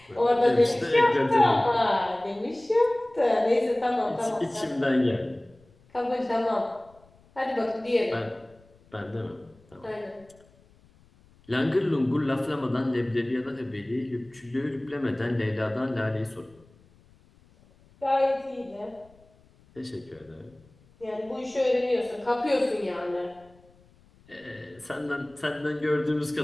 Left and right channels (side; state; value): left; noise; rumble, 29 dB below the sound